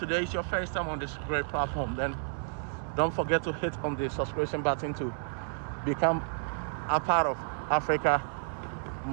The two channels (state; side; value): silent; left; 57 dB below the other